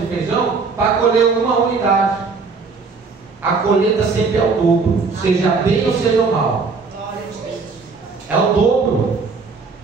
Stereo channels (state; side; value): quieter; left; 4.7 dB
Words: feijão para colher uma unidade. A colheita sempre é o dobro, seja bem ou seja mal. É o dobro.